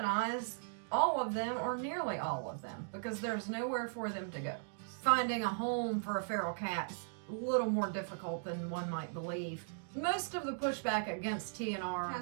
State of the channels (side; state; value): left; silent; digital silence